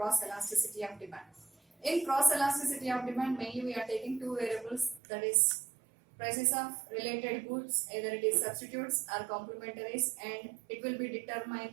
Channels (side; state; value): left; drops out; at 5.0 s